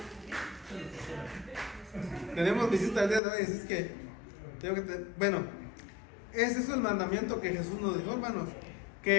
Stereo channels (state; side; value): drops out; right; at 3.2 s